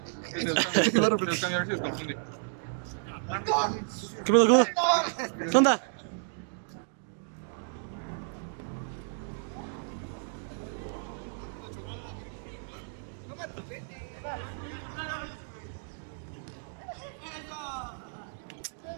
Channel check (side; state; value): left; silent; digital silence